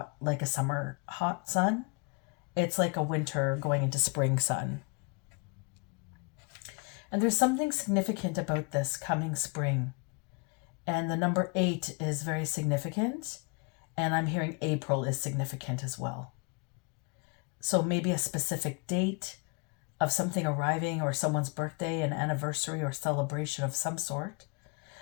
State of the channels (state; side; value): quieter; right; 33.6 dB